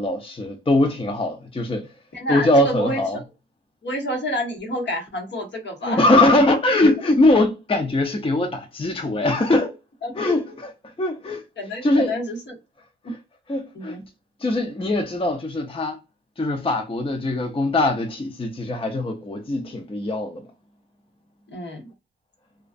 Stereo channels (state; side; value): normal; both; correlation 0.56